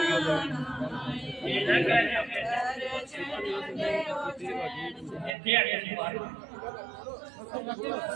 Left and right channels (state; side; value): drops out; left; at 5.3 s